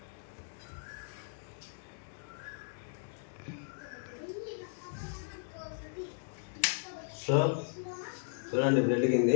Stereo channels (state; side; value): silent; right; digital silence